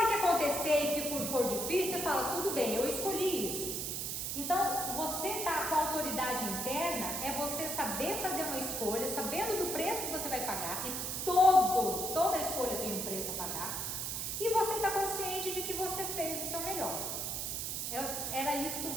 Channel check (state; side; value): noise; right; hiss, 2 dB below the sound